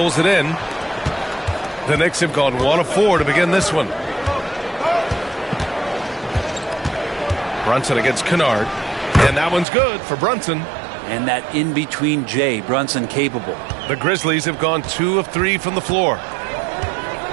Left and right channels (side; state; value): left; drops out; at 9.7 s